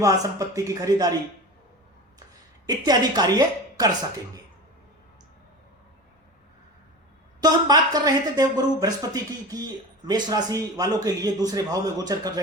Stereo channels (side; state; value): both; normal; correlation 0.31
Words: संपत्ति की खरीदारी इत्यादि कार्य कर सकेंगे। तो हम बात कर रहे थे देवगुरु बृहस्पति की मेष राशि वालों के लिए दूसरे भाव में गोचर कर